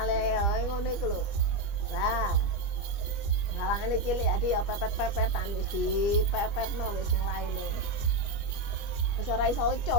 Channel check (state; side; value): late; right; 25 ms